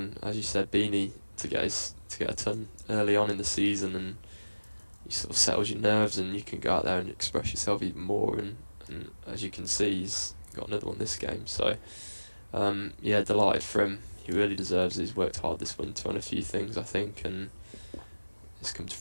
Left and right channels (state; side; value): inverted; both; correlation -1.00